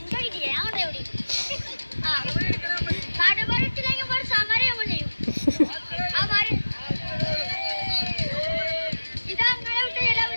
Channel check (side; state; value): both; inverted; correlation -1.00